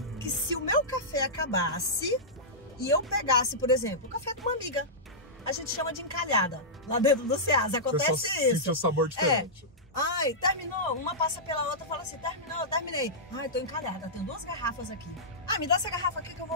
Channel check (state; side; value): normal; both; correlation -0.14